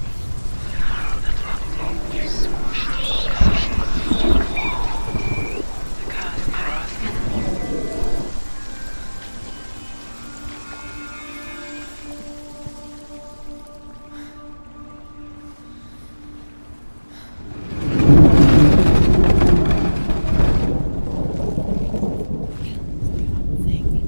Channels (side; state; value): both; inverted; correlation -1.00